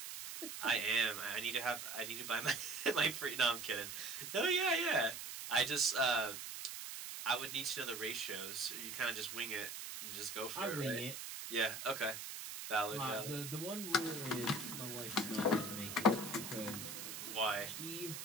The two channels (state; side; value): noise; right; hiss, 7 dB below the sound